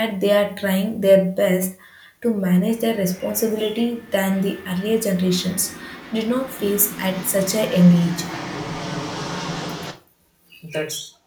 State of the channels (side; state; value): both; identical; correlation 1.00